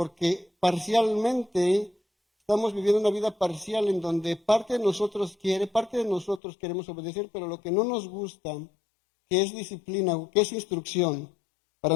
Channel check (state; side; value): drops out; right; at 6.4 s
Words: parcialmente estamos viviendo una vida parcial en donde parte de nosotros quiere, parte de nosotros queremos obedecer, pero lo que no nos gusta, que es disciplina, que es instrucción para